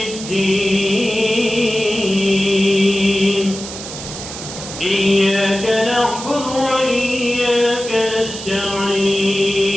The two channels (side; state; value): right; noise; hiss, 10 dB below the sound